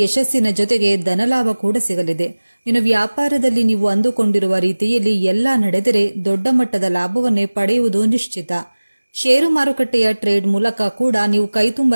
ಯಶಸ್ಸಿನ ಜೊತೆಗೆ ಧನಲಾಭ ಕೂಡ ಸಿಗಲಿದೆ. ಇನ್ನು ವ್ಯಾಪಾರದಲ್ಲಿ ನೀವು ಅಂದುಕೊಂಡಿರುವ ರೀತಿಯಲ್ಲಿ ಎಲ್ಲ ನಡೆದರೆ ದೊಡ್ಡ ಮಟ್ಟದ ಲಾಭವನ್ನೇ ಪಡೆಯುವುದು ನಿಶ್ಚಿತ. ಷೇರು ಮಾರುಕಟ್ಟೆಯ ಟ್ರೇಡ್ ಮೂಲಕ ಕೂಡ ನೀವು ಕೈತುಂಬ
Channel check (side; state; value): both; inverted; correlation -1.00